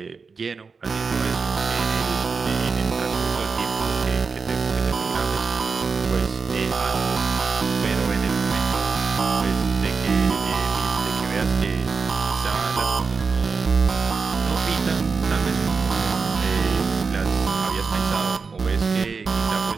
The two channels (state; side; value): quieter; left; 4.8 dB